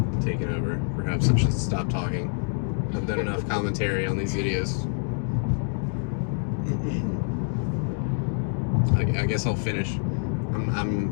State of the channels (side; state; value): right; silent; 56 dB below the other